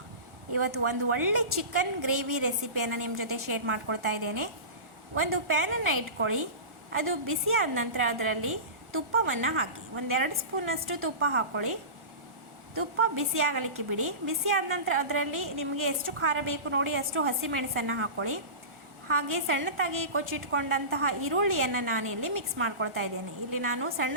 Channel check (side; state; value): left; late; 1.4 ms